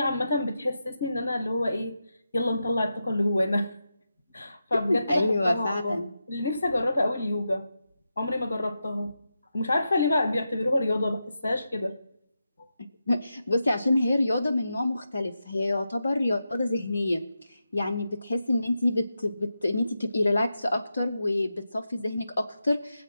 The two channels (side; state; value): both; inverted; correlation -0.88